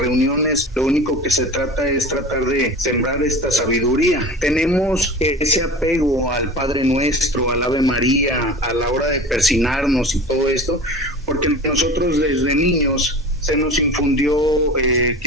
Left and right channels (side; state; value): both; normal; correlation 0.36